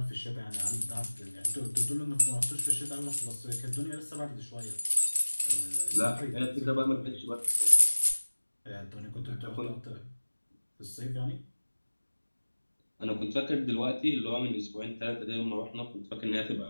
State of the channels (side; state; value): both; inverted; correlation -1.00